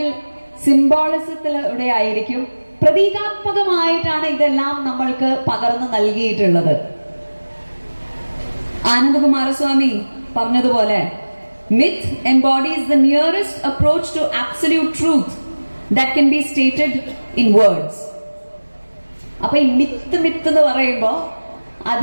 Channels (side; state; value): both; inverted; correlation -1.00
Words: സിംബോളിസത്തിലൂടെ ആയിരിക്കും, പ്രതീകാത്മകമായിട്ടാണ് ഇതെല്ലാം നമ്മൾക്ക് പകർന്നു നൽകിയിട്ടുള്ളത്. ആനന്ദകുമാരസ്വാമി പറഞ്ഞതുപോലെ, myth embodies the nearest approach to absolute truth that can be stated in words. അപ്പൊ ഈ മിത്ത് എന്ന് പറയുമ്പോ